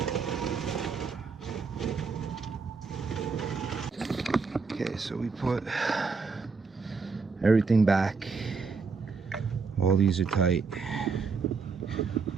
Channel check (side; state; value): left; quieter; 4.9 dB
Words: so we put everything back. All these are tight.